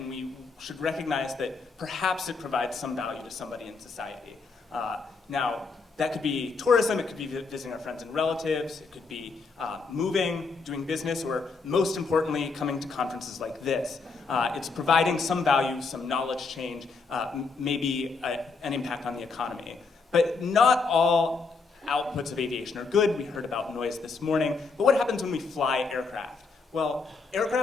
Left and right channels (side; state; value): right; quieter; 4.5 dB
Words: we should recognize that perhaps it provides some value to somebody in society. Now, that could be tourism, it could be visiting our friends and relatives, it could be moving, doing business, or most importantly, coming to conferences like this. It's providing some value, some knowledge change, maybe an impact on the economy. But not all outputs of aviation are good. We heard about noise this morning. But what happens when we fly aircraft? Well,